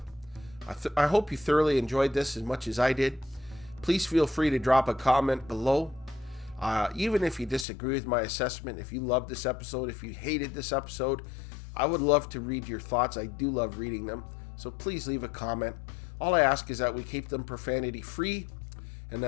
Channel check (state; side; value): drops out; right; at 7.7 s